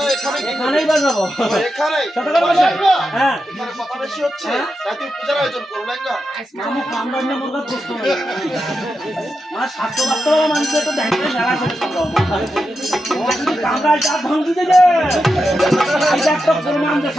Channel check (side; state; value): both; normal; correlation 0.88